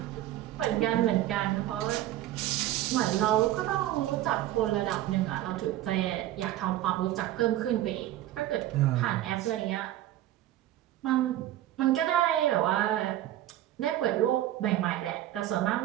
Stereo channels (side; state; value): left; quieter; 13.8 dB